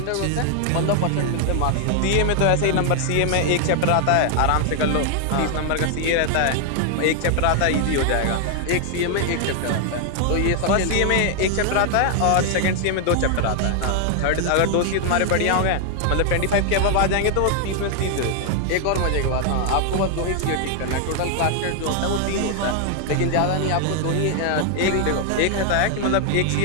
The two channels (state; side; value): different; both; correlation 0.00